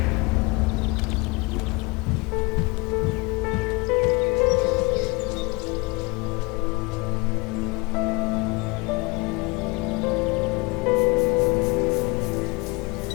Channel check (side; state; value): right; quieter; 26.4 dB